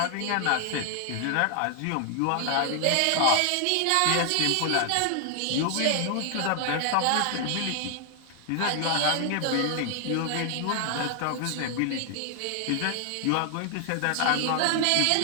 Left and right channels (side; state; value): both; different; correlation 0.00